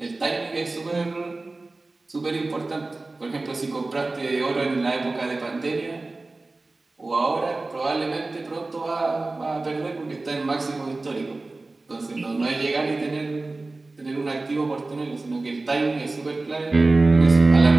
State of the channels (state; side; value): quieter; left; 3.3 dB